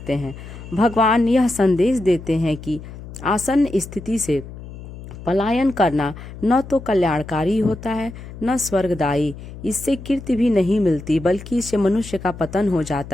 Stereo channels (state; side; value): noise; left; hum, 14 dB below the sound